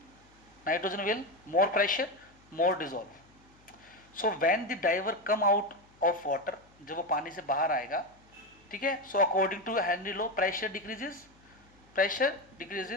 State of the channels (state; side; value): noise; left; hum, 29 dB below the sound